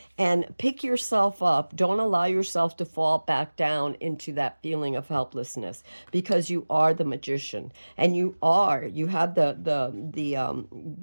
and pick yourself up. Don't allow yourself to fall back down into that feeling of helplessness, because you are the magician, and you have the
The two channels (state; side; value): inverted; both; correlation -1.00